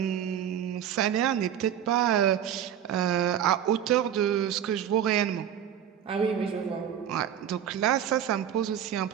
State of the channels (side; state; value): left; quieter; 9.6 dB